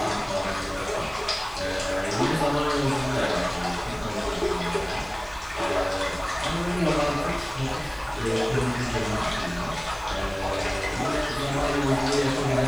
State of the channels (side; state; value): left; noise; hiss, 26 dB below the sound